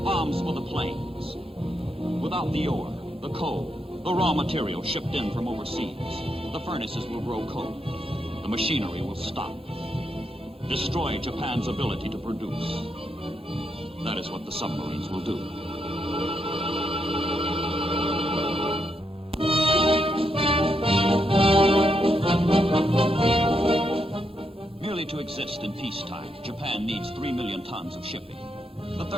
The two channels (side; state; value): both; normal; correlation 0.80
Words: bombs for the planes. Without the ore, the coal, the raw material shipped in from overseas, the furnaces will grow cold. The machinery will stop. Destroy Japan's ability to produce. That is what the submarines will do. Merely to exist in peacetime, Japan needs 3 million tons of shipping, the